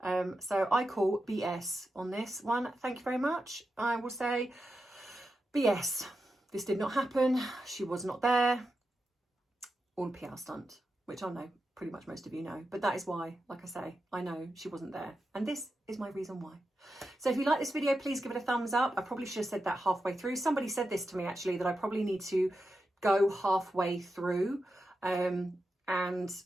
So I call BS on this one. Thank you very much. I will say BS. This did not happen. She was not there. All a PR stunt, which I know pretty much most of you know. But that is why, like I say, I know she wasn't there. And this is my reason why. So if you like this video, please give it a thumbs up. I probably should have said that halfway through. Somebody said this to me actually, that I probably need to go halfway through and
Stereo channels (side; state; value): both; normal; correlation 0.89